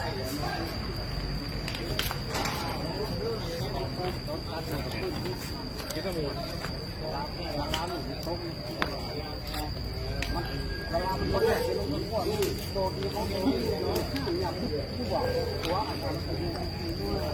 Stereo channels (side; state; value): both; identical; correlation 1.00